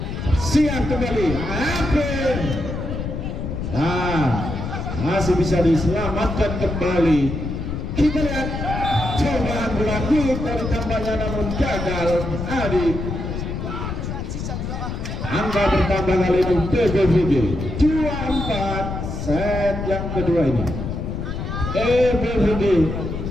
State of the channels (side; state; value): left; noise; rumble, 5 dB below the sound